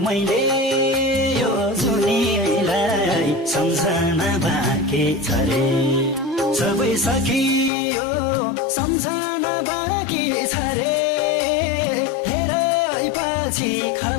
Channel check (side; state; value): right; drops out; at 7.7 s